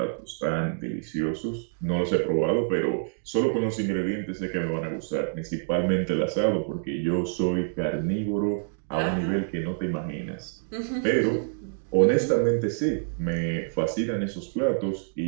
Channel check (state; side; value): silent; left; digital silence